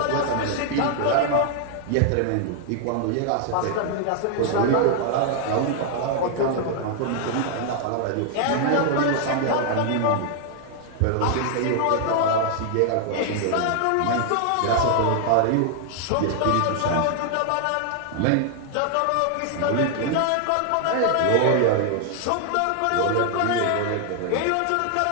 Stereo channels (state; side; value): different; both; correlation 0.00